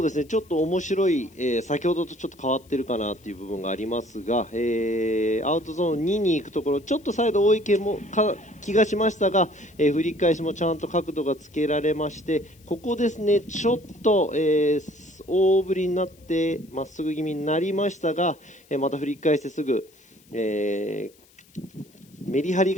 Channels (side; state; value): left; noise; hiss, 29 dB below the sound